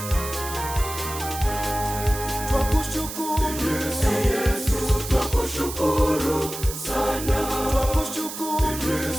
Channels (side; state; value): right; noise; hiss, 9 dB below the sound